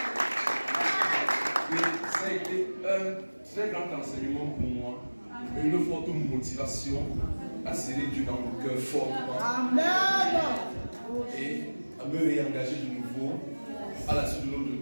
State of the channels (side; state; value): both; inverted; correlation -1.00